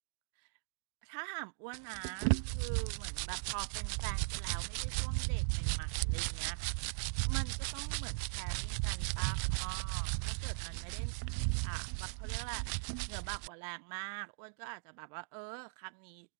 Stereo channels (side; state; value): left; silent; digital silence